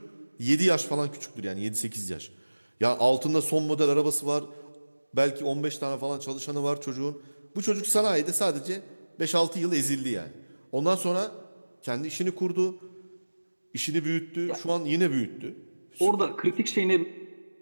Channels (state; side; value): inverted; both; correlation -1.00